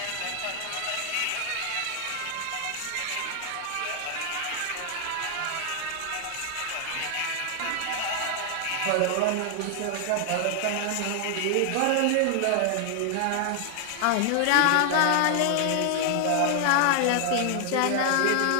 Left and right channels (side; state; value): both; different; correlation 0.00